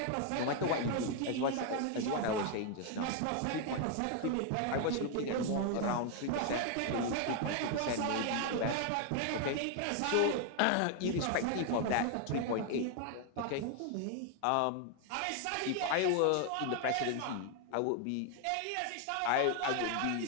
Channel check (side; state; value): both; different; correlation 0.01